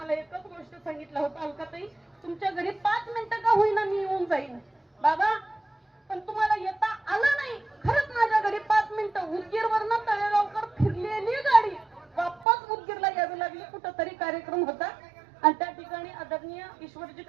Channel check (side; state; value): left; drops out; at 12.5 s